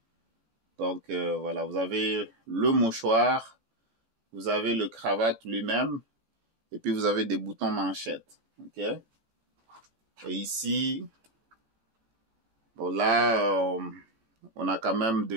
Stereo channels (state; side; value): late; left; 18 ms